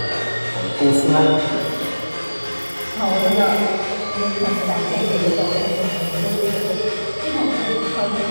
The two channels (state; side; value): inverted; both; correlation -1.00